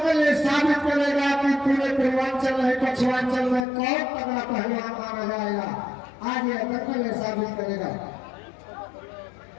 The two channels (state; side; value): drops out; right; at 3.7 s